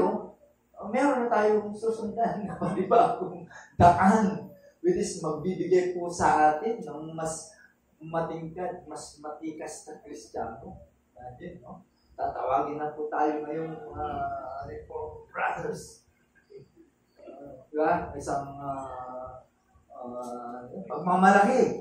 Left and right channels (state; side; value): identical; both; correlation 1.00